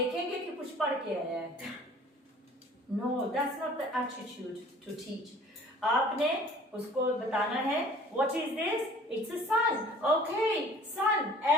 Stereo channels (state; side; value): normal; both; correlation 0.50